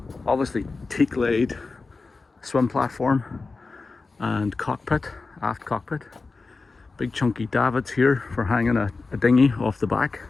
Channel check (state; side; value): quieter; right; 4.0 dB